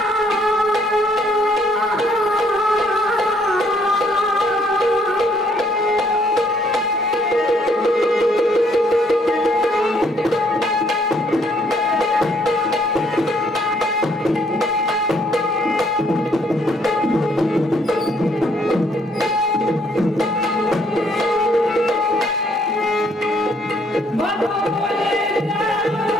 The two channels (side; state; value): both; normal; correlation 0.67